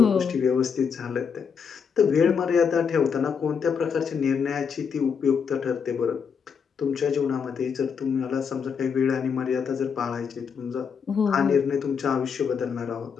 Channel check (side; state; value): right; quieter; 6.5 dB